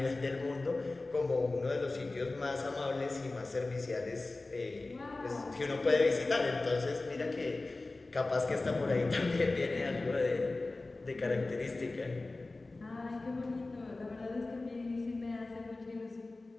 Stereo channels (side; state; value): right; quieter; 3.2 dB